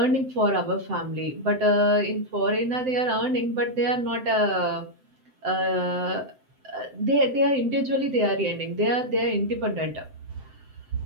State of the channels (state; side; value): late; left; 7.8 ms